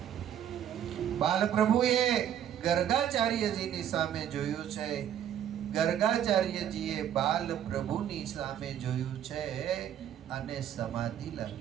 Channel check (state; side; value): quieter; left; 10.2 dB